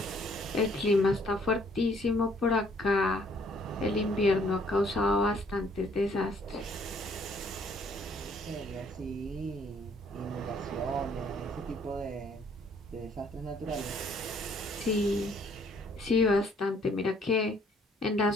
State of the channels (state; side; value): normal; both; correlation 0.63